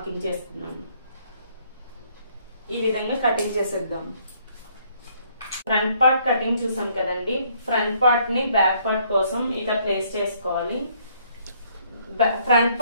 చేస్తున్నాను. ఈ విధంగా కటింగ్ చేసేద్దాం. ఫ్రంట్ పార్ట్ కటింగ్ చూసాం కదండి. ఫ్రంట్ పార్ట్ ని బ్యాక్ పార్ట్ కోసం ఇట్లా ప్లేస్ చేసుకోవాలి. ఫ్రంట్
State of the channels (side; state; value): both; inverted; correlation -0.66